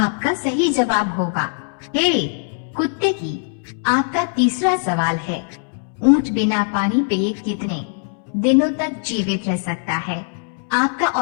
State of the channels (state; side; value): silent; right; digital silence